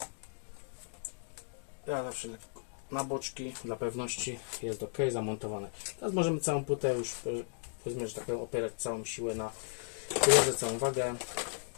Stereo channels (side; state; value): right; silent; digital silence